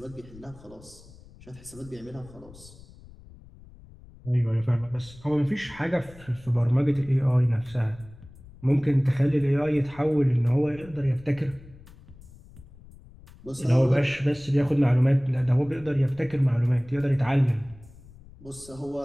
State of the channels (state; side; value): noise; left; rumble, 21 dB below the sound